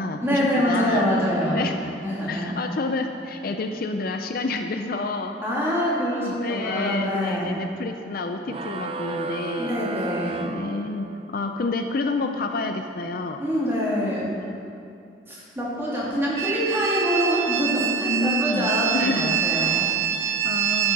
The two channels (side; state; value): both; normal; correlation 0.36